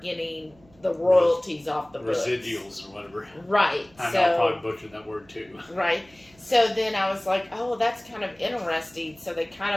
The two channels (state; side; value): noise; right; hum, 29 dB below the sound